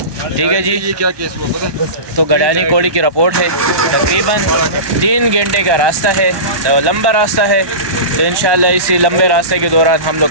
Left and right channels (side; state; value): left; late; 1.2 ms